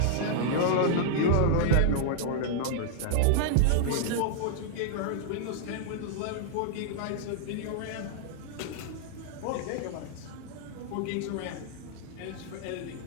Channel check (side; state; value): both; different; correlation -0.01